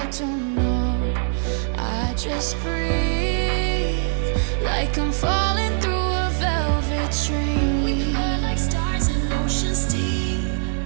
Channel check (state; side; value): silent; left; 64 dB below the other